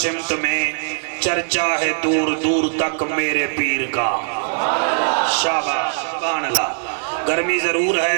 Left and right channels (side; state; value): left; silent; 66 dB below the other